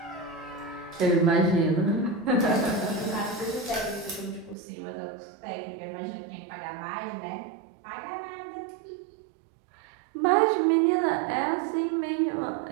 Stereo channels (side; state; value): left; drops out; at 4.5 s